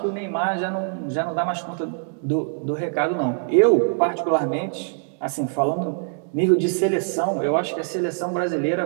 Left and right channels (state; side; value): silent; left; 63 dB below the other